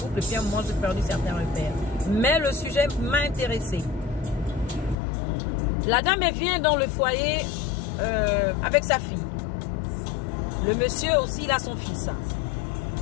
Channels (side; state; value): right; drops out; at 5.0 s